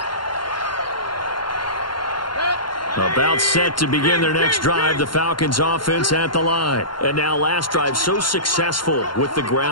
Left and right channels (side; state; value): right; late; 0.72 ms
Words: About set to begin their next drive, the Falcons offense at the line. And now last drive so successful with the